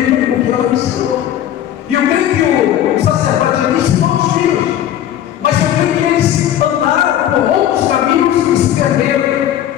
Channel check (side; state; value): right; quieter; 11.3 dB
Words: o que ela me ensinou. E eu creio que o sacerdote me ensinou os filhos. Mas eu creio que eles andaram por outros caminhos e se perderam.